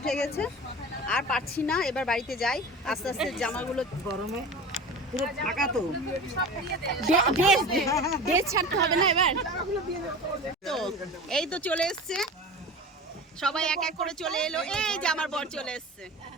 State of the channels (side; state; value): both; normal; correlation 0.34